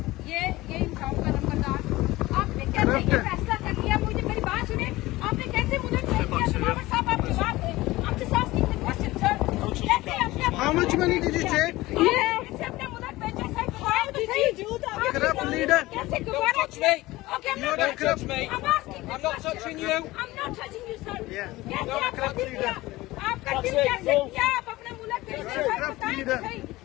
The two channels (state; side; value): quieter; right; 18.8 dB